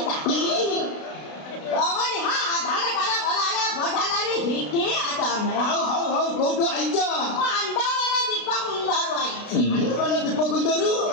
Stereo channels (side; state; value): right; late; 33 ms